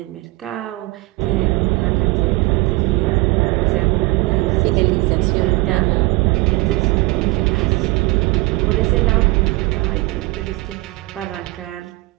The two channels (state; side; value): quieter; left; 22.5 dB